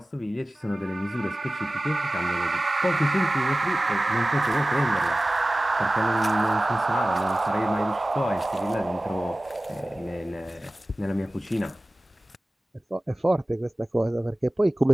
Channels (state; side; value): normal; both; correlation 0.97